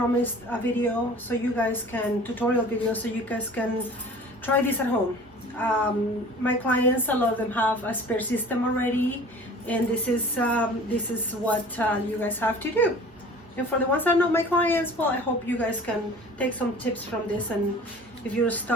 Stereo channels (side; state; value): right; noise; hum, 29 dB below the sound